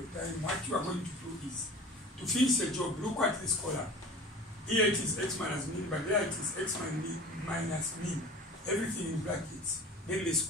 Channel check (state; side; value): normal; both; correlation 0.39